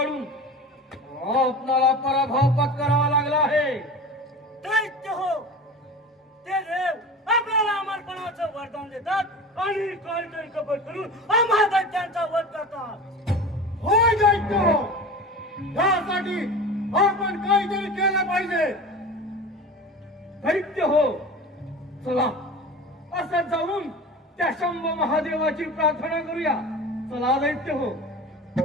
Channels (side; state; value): both; normal; correlation 0.34